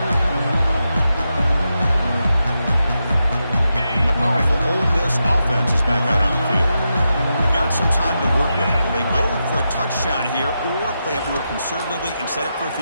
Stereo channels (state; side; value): inverted; both; correlation -0.87